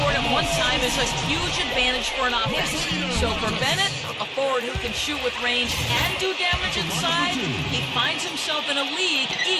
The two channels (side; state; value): both; identical; correlation 1.00